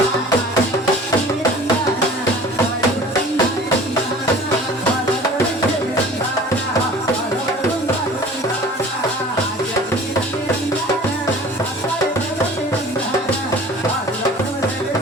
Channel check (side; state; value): both; normal; correlation 0.44